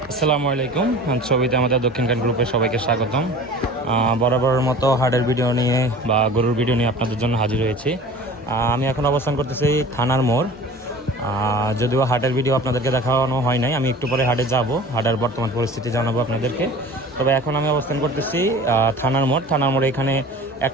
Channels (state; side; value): normal; both; correlation 0.41